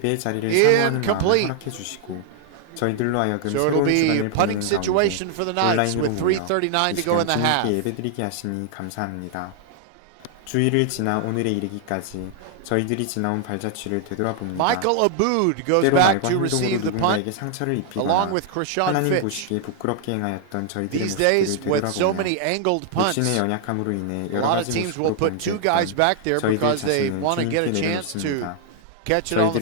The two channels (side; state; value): both; different; correlation 0.00